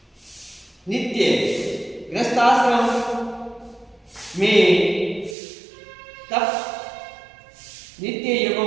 नित्य गृहस्थाश्रम में तप नित्य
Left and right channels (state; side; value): drops out; left; at 5.4 s